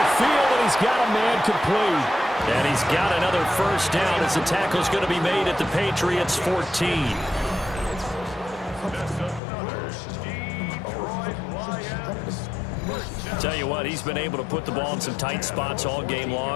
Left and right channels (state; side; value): drops out; right; at 9.4 s